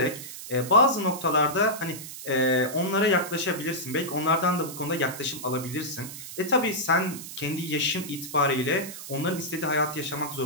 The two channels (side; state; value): right; noise; hiss, 11 dB below the sound